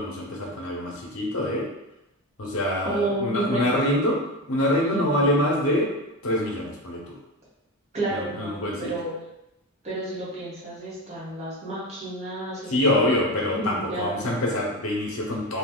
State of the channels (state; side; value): normal; both; correlation 0.21